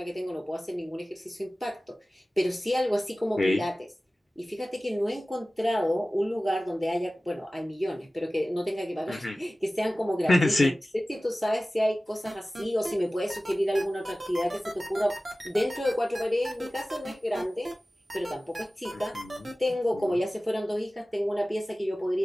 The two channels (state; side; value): normal; both; correlation 0.97